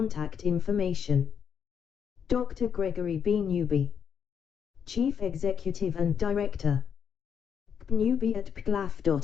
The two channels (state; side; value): quieter; right; 7.5 dB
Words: information, Dr. Gregory B. Newby, Chief Executive and Director,